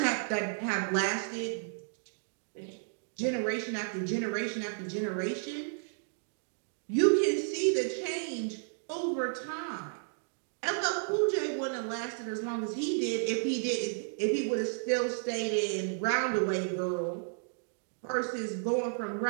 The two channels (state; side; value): silent; left; digital silence